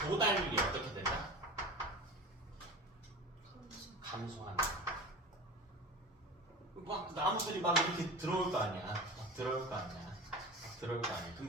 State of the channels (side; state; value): both; normal; correlation 0.33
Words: 도달률이 어떻게 된다? 감소한다. 막 나무들이 막 이렇게 들어올 거 아니야. 그럼